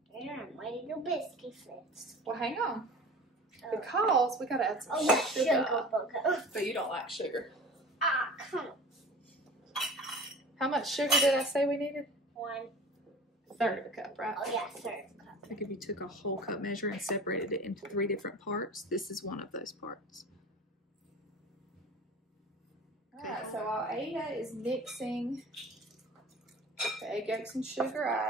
Yeah, I'm ready to biscuit fix. Well, hang on. Because we gotta add some sugar. But you don't like sugar. Ah, come on. How much sugar did I say we needed? 1/3 of a cup, right? Oh, yeah, 1/3 cup. I think if you took a whole cup measure and separated it into 3 different parts, this is one of those parts. Alright, so while Ada is mixing the egg yolks and sugar,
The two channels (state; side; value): normal; both; correlation 0.40